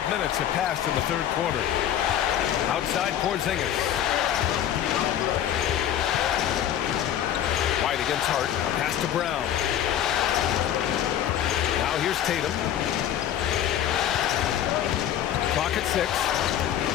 minutes have passed in the third quarter. Outside Porzingis. White against Hart. Pass to Brown. Now here's Tatum. Clock at 6.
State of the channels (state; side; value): quieter; right; 10.6 dB